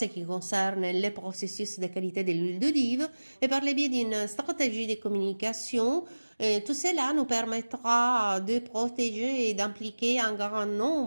qui concerne les processus de qualité de l'huile d'olive et par le biais d'une stratégie de communication, tout cela nous permettra de protéger et d'impliquer un grand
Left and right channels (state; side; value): inverted; both; correlation -1.00